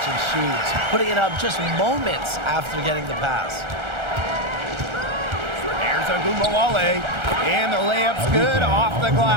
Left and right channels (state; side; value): late; left; 1.4 ms